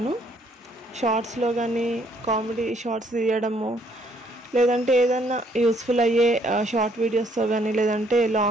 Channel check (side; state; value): both; normal; correlation 0.66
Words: షార్ట్స్లో కానీ కామెడీ షార్ట్స్ తీయడము, లేదంటే ఏదన్నా యూస్ఫుల్ అయ్యే షార్ట్ వీడియోస్తో కానీ, లేదంటే